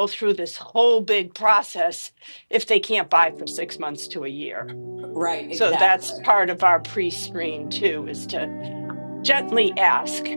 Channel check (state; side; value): inverted; both; correlation -1.00